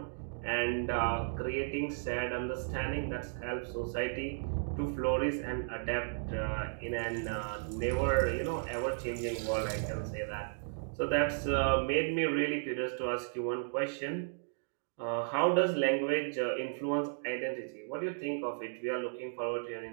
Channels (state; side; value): silent; left; digital silence